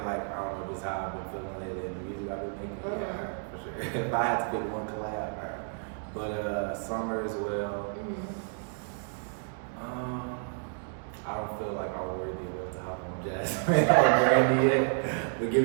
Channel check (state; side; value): silent; left; 57 dB below the other